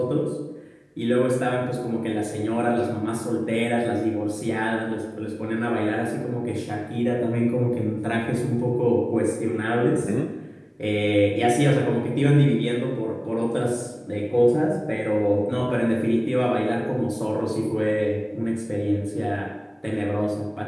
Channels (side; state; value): both; identical; correlation 1.00